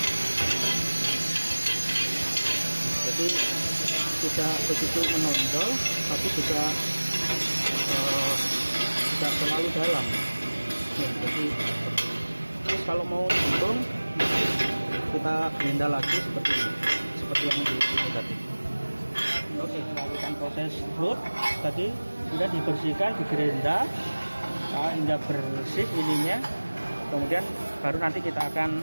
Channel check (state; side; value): inverted; both; correlation -1.00